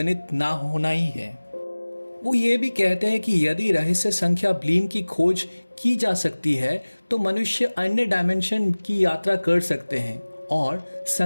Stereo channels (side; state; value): both; inverted; correlation -1.00